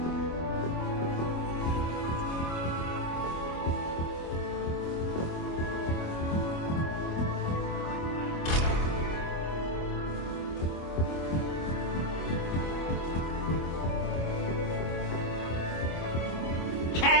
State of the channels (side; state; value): right; late; 25 ms